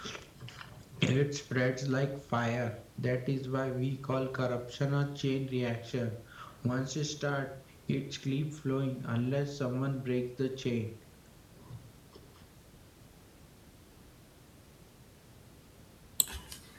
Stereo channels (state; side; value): identical; both; correlation 1.00